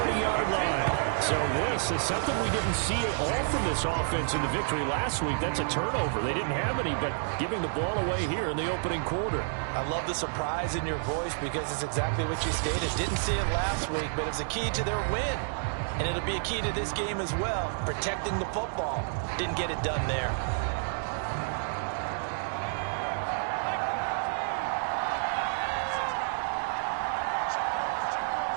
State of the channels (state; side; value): silent; left; digital silence